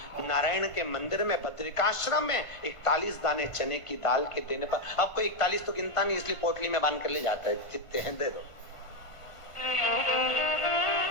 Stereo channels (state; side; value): late; right; 1.5 ms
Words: नारायण के मंदिर में बद्रिकाश्रम में 41 दाने चने की दाल के देने पर, अब कोई 41 तो गिनता नहीं, इसलिए पोटली में बांध कर ले जाता है, जितने हैं दे दो,